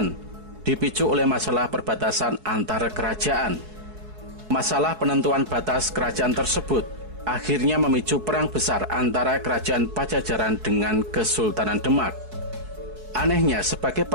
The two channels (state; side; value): late; left; 4.7 ms